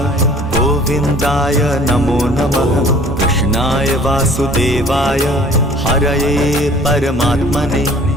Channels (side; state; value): both; normal; correlation 0.51